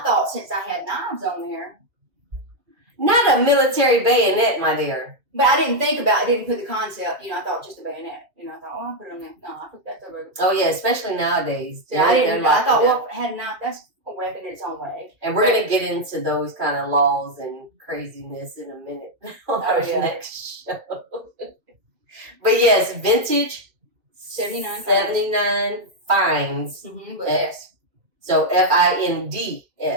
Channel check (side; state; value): left; late; 2.2 ms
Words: thought since I had knives on there, not a military bayonet, my dear. But I didn't think about it. I didn't put the concept. You know, I thought just a bayonet. You know, I thought, I'll put it on there. No, I put that over. Oh yeah, especially nowadays. Yeah, I didn't. I thought, well, had a knife. That's a weapon in its own way. And we're gonna get into those kind of laws and craziness in a minute on our next show. But yes, vintage 79 finds. Mm-hmm, with S. So FINDS.